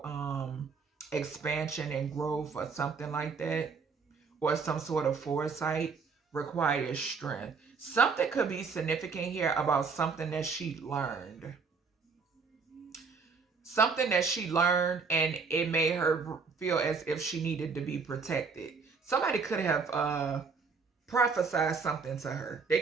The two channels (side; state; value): left; quieter; 5.0 dB